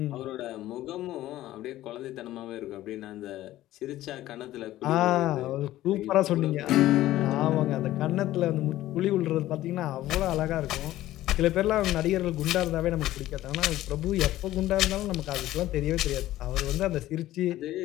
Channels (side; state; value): right; quieter; 14.9 dB